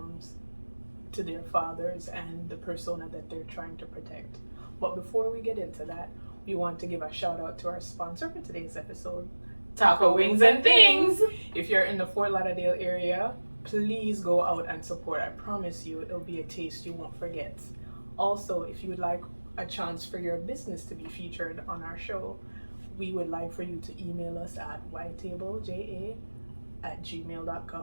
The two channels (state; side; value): inverted; both; correlation -1.00